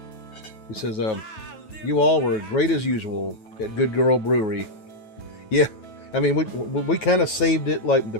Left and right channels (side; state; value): right; late; 9.3 ms